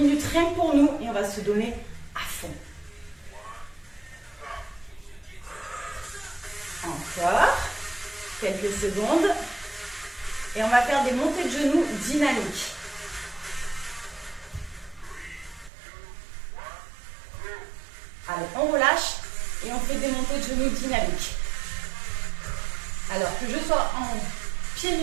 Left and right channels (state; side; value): drops out; left; at 15.7 s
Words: rien que pour nous et on va se donner à fond. Encore. Quelques secondes. Et on va faire des montées de genoux dynamiques. Allez, on relâche et on fait des montées de genoux dynamiques. Alors que je sois en pieds